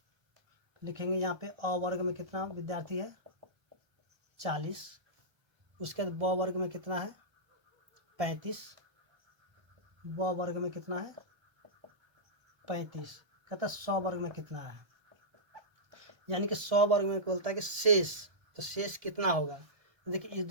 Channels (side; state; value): left; late; 1.3 ms